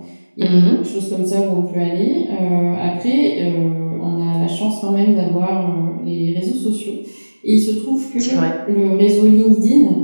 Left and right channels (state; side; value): inverted; both; correlation -1.00